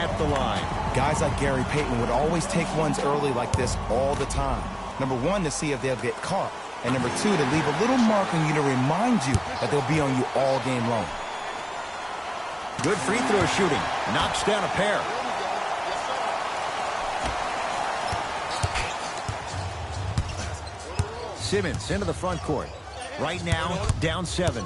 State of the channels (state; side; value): identical; both; correlation 1.00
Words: the line. Guys like Gary Payton would always take ones early like this all the time. Number one, to see if they'll get caught. And number two, to leave a little mark on you to remind you that they'll be on you all game long. Good free throw shooting. Knocks down a pair. Simmons into the front court. Right now, down 7.